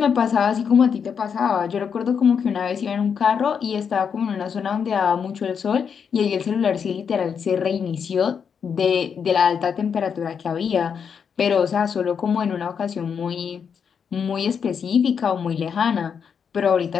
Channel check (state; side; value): quieter; right; 6.8 dB